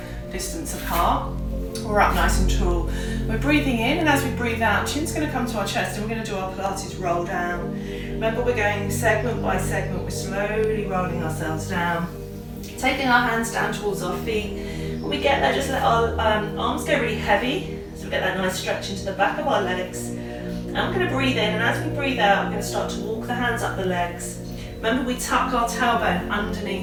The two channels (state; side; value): identical; both; correlation 1.00